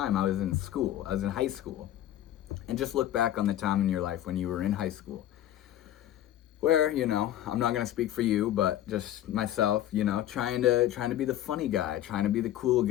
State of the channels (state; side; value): quieter; right; 12.5 dB